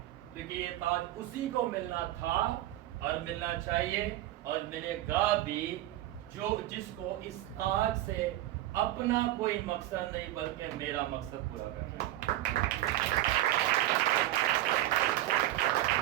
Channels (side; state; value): left; quieter; 14.7 dB